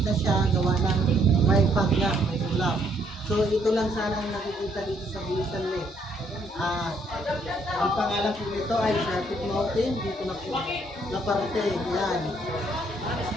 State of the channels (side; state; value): both; normal; correlation 0.69